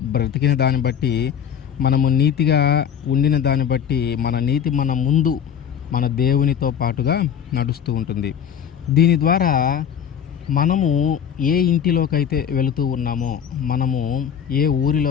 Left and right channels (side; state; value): right; quieter; 8.7 dB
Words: బ్రతికిన దాన్ని బట్టి, మనము నీతిగా ఉండిన దాన్ని బట్టి మన నీతి మన ముందు మన దేవునితో పాటుగా నడుస్తూ ఉంటుంది. దీని ద్వారా మనము ఏ ఇంటిలోకైతే వెళుతూ ఉన్నామో, మనము ఏ